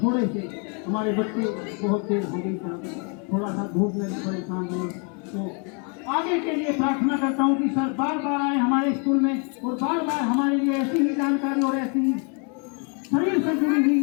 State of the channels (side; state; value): right; quieter; 37.6 dB